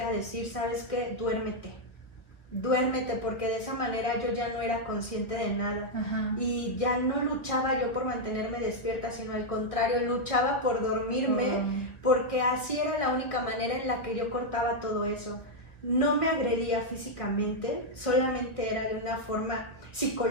decir, ¿sabes qué? Duérmete, porque de esa manera yo ya no era consciente de nada. Y ya no luchaba yo por mantenerme despierta, sino al contrario, luchaba por dormirme, porque así era la única manera en la que yo cortaba todo eso. No me agredía físicamente, solamente era de una forma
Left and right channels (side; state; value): right; late; 1.1 ms